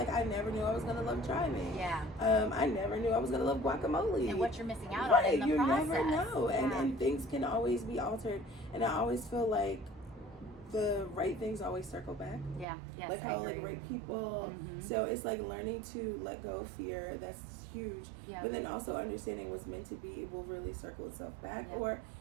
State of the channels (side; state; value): left; drops out; at 12.7 s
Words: I never knew I was gonna love driving. Yeah. I never knew I was gonna love guacamole. And what you're missing out on in the process. You never know, and things can always be altered. And I always feel like the right things always circle back. Yeah. Yes. Like how like right people. So it's like learning to let go of fear. That's huge. Yeah. But then also understanding what's meant to be will really circle itself back, or